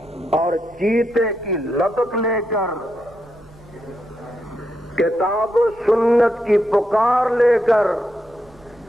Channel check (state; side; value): noise; right; rumble, 27 dB below the sound